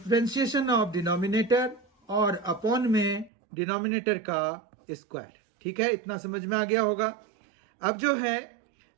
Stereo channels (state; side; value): drops out; left; at 3.3 s